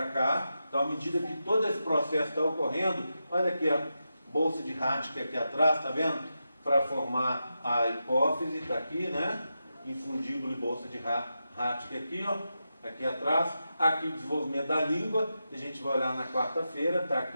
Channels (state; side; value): inverted; both; correlation -0.89